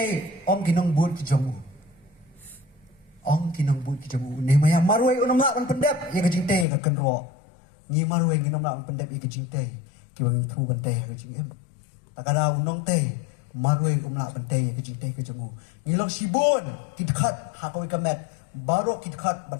om kinong bud ki jongu. Om kinong bud ki jongu ni maya marwai unam la ban pendep ya ka jingte ka kenro. Ni marwai nginom la ban pendep ya ka jingte. Ki wang thu ban te ka jingem. Takada unong te marwai umla bante ke jinte ke jemu ngilong sibun kidkhat hakoi kamet baro kidkhat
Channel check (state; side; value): drops out; right; at 6.7 s